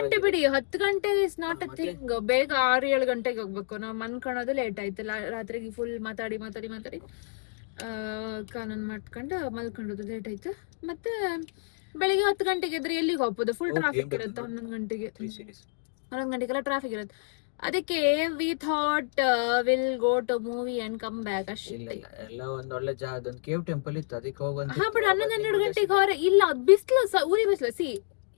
ಬಿಡಿ, 10 ಗಂಟೆ ಇಸ್ ನಾಟ್ ಅ ಥಿಂಗ್. ಬೇಗ 6-7 ಗಂಟೆಗೆ ಹೋಗ್ಬೇಕು. ನಾವು ಮನ್ಕೊಳ್ಳೋದು ಲೇಟ್ ಆಯ್ತು. ರಾತ್ರಿಗೆ ಫುಲ್ ಮಾತಾಡಿ ಕಾನೂನು ಮಾಡ್ಕೊಂಡು ಮಲ್ಕೊಂಡೋದು ಲೇಟ್ ಆಯ್ತು. ಮತ್ತೆ ಬೆಳಿಗ್ಗೆ 10 ಗಂಟೆಗೆ ಇದ್ರೆ ಎಲ್ಲಿಗೆ ಹೋಗ್ಬೋದು? ಫುಲ್ ಟ್ರಾಫಿಕ್ ಇರುತ್ತೆ. 11 ಗಂಟೆಗೆಲ್ಲ ಟ್ರಾಫಿಕ್ ಇರುತ್ತೆ. ಅದಕ್ಕೆ we thought will go to movie and come back ಅಷ್ಟೇ. ಎಲ್ಲ ಒಂದ್ ಒಳ್ಳೆ ಜಾಗದೊಂದು ಕೇವ್ ಟೆಂಪಲ್ ಇತ್ತು, ಅದಕ್ಕೆ ಹೋಗಂತ. ಹಾ, ಬಟ್ 11-12 ಗಂಟೆಗೆ ಹೊರ ಇಲ್ಲ, ಬಿಸಿಲು ಊರಿ ಬಿಸಿಲು. See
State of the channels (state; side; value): silent; right; digital silence